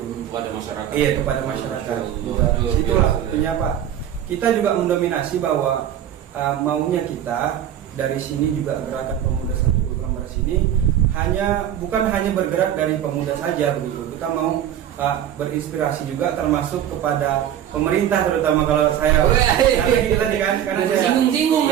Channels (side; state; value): left; quieter; 10.5 dB